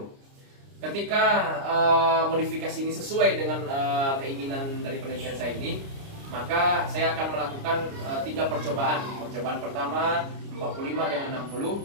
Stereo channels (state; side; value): late; left; 29 ms